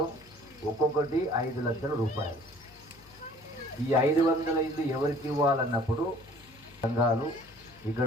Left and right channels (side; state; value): left; noise; hum, 26 dB below the sound